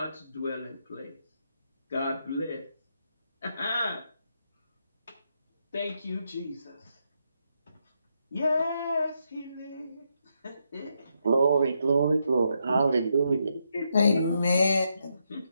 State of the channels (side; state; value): both; inverted; correlation -0.80